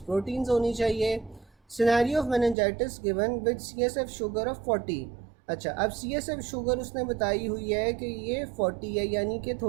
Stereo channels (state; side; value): drops out; left; at 2.6 s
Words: प्रोटीन्स होनी चाहिए। Scenario of meningitis given with CSF sugar of 40। अच्छा, अब CSF शुगर उसने बताई हुई है कि ये 40 है, यानी कि